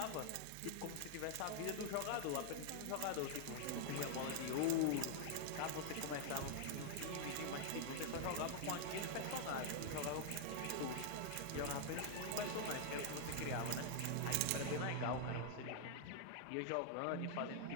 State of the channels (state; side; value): different; both; correlation 0.00